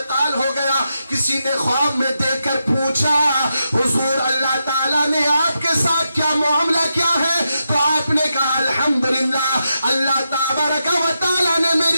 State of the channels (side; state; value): both; inverted; correlation -0.86